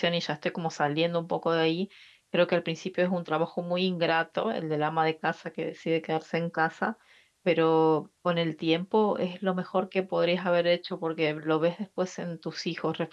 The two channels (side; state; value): both; identical; correlation 1.00